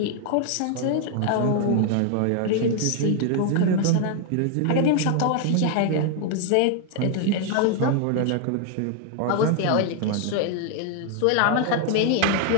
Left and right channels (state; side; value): different; both; correlation 0.00